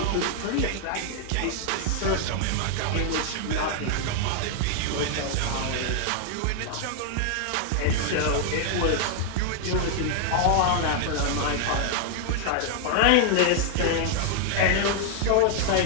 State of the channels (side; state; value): both; different; correlation 0.00